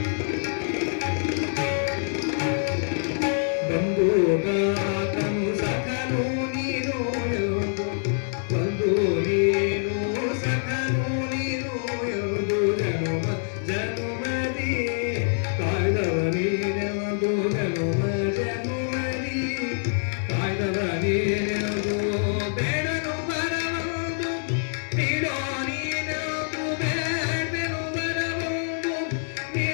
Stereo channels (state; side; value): silent; right; digital silence